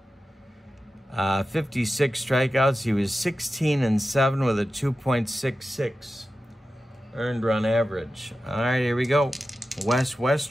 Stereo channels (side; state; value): both; normal; correlation 0.93